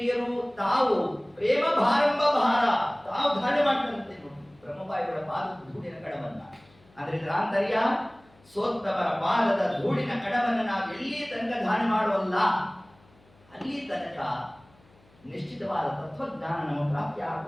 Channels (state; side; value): noise; left; hum, 30 dB below the sound